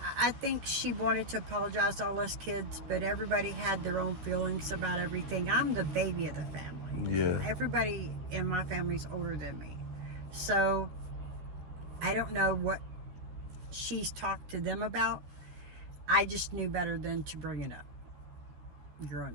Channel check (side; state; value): left; late; 13 ms